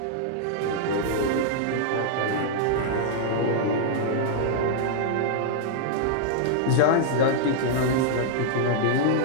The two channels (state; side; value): different; both; correlation -0.02